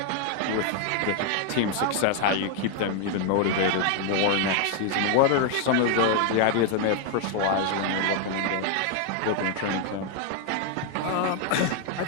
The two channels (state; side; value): different; both; correlation 0.00